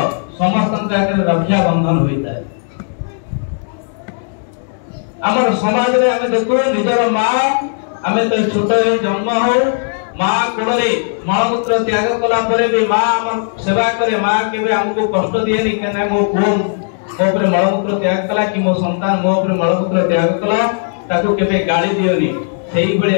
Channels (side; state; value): right; silent; digital silence